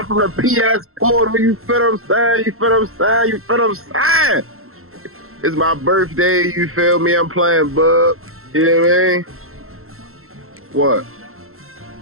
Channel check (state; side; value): late; left; 0.62 ms